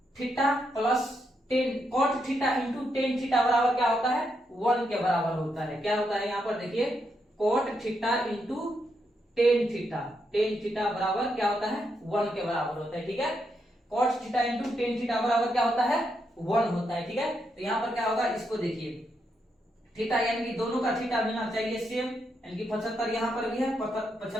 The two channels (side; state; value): both; normal; correlation 0.81